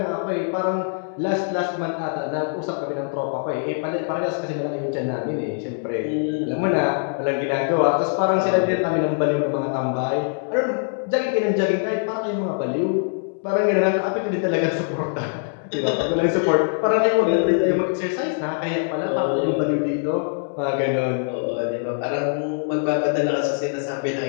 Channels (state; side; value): silent; right; digital silence